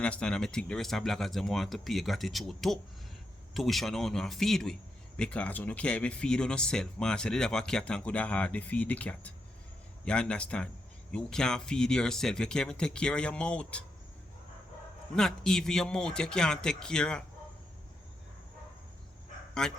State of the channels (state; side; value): normal; both; correlation 0.83